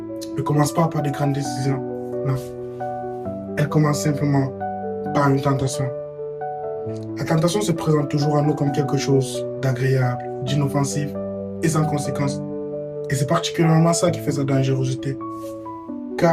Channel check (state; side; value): identical; both; correlation 1.00